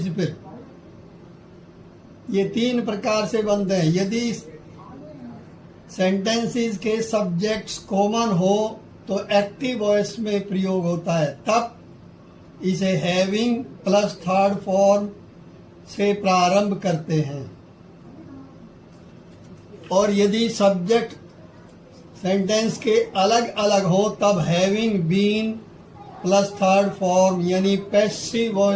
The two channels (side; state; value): both; identical; correlation 1.00